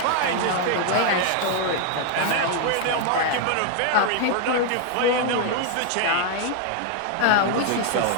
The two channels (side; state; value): both; different; correlation 0.00